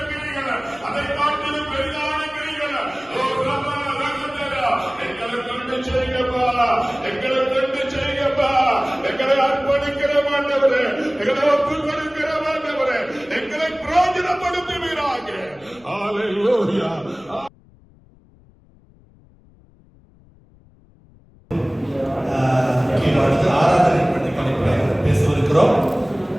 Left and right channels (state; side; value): noise; left; rumble, 28 dB below the sound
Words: கிரிகளை, அதை காட்டிலும் பெரிதான கிரிகளை எங்களை கொண்டு செய்யப்பா, எங்களை கொண்டு செய்யப்பா, எங்களை அர்ப்பணிக்கிற மாட்டவரே, எங்களை ஒப்பு கொடுக்கிற மாட்டவரே, எங்களை பிரயோஜனப்படுத்துவீராக. ஹல்லேலூயா. பேசவிருக்கிறோம்.